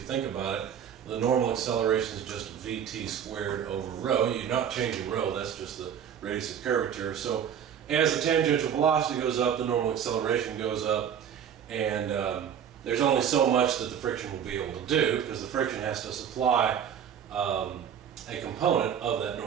think about it, the normal acceleration is just VT squared over rho. You're not changing rho, that's just the radius of curvature. So as the tangential velocity goes up, the normal acceleration goes up, and there's only so much that the friction will be able to do because the friction has to supply a component of that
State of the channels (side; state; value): left; quieter; 8.6 dB